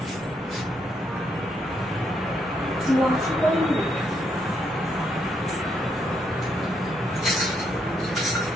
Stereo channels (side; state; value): both; normal; correlation 0.76